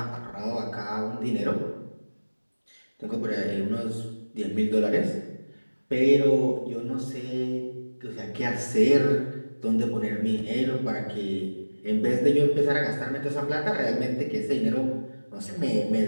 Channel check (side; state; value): both; inverted; correlation -1.00